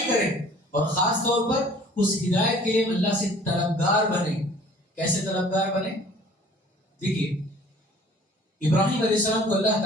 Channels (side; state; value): both; normal; correlation 0.51